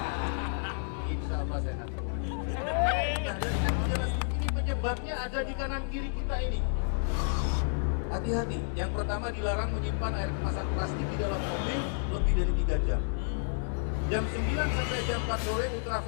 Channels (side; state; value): right; silent; digital silence